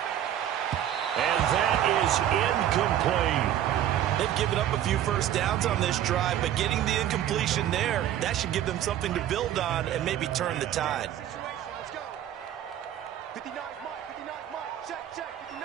And that is incomplete. They've given up a few first downs on this drive, but getting the incompletion there, that should give them something to build on and maybe turn the tide. Let's go. 59, Mike. Check.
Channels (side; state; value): left; quieter; 11.3 dB